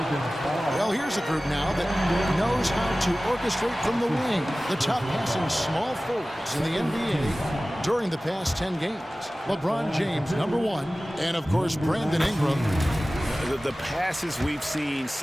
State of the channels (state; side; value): normal; both; correlation 0.97